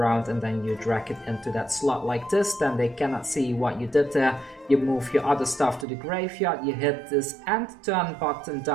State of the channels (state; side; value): drops out; left; at 5.9 s